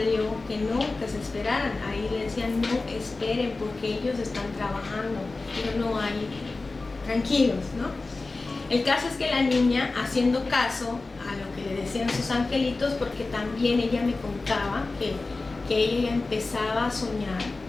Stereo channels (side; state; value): right; quieter; 3.5 dB